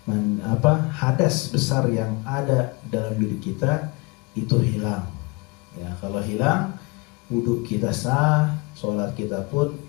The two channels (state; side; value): quieter; right; 27.4 dB